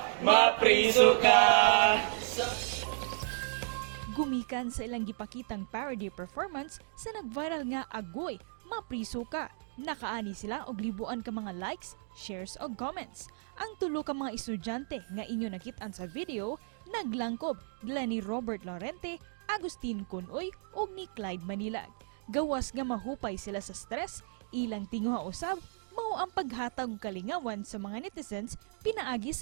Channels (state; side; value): silent; left; digital silence